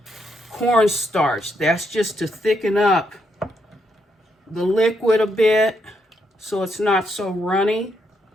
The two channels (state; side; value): normal; both; correlation 0.78